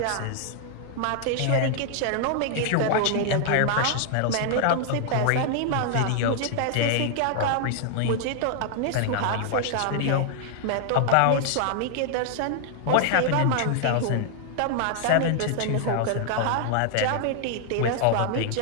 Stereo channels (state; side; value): different; both; correlation 0.00